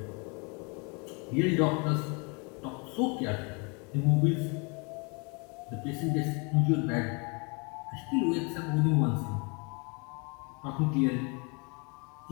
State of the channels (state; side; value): quieter; right; 32.4 dB